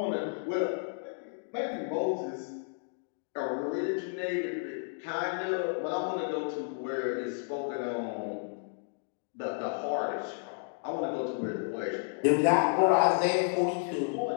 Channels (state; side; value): silent; right; digital silence